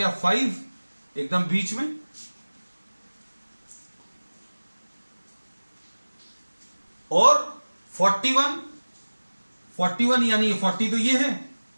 5 एकदम बीच में, और 41 यानी 40 तो ये है,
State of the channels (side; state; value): both; inverted; correlation -1.00